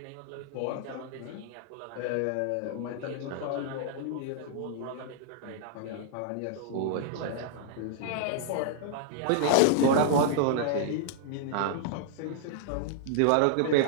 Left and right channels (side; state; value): both; different; correlation -0.01